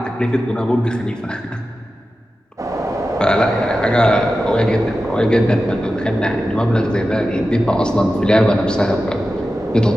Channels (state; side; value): normal; both; correlation 0.93